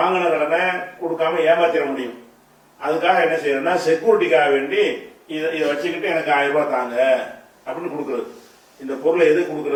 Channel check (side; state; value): both; identical; correlation 1.00